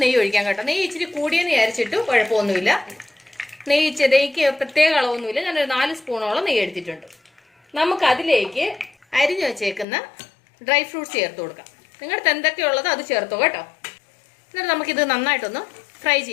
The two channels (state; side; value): drops out; right; at 9.9 s